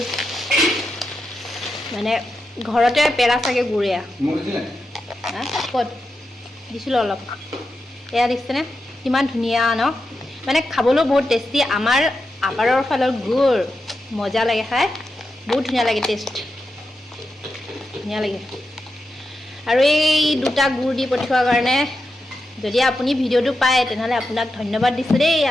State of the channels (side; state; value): both; normal; correlation 0.88